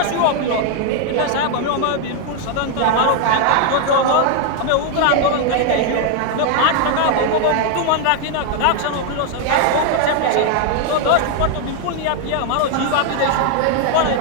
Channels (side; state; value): both; different; correlation 0.01